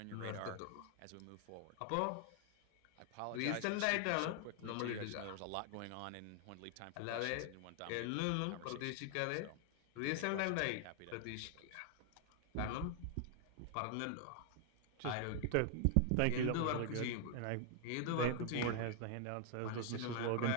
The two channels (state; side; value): different; both; correlation 0.00